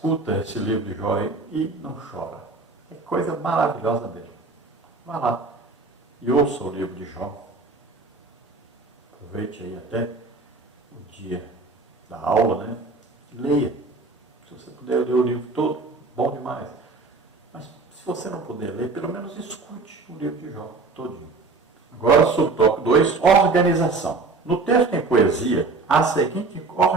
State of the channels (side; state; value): left; quieter; 3.9 dB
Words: esse livro de Jó e não chora. É coisa maravilhosa mesmo. Vá lá e ouça o livro de Jó. Aproveite aí até o dia da aula, né? Leia. Se você puder ler o livro todo, bom demais. Mas se você não puder ler, pelo menos escute o livro de Jó todinho. Agora, subtópico 2, organização. No texto em poesia, há a seguinte